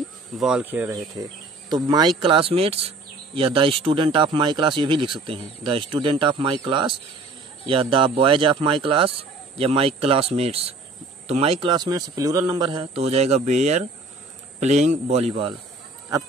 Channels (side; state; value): left; quieter; 3.3 dB